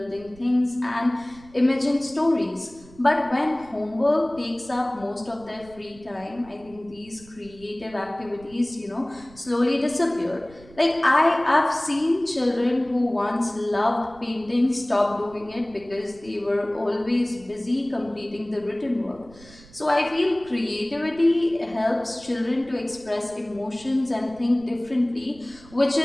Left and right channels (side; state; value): right; noise; rumble, 23 dB below the sound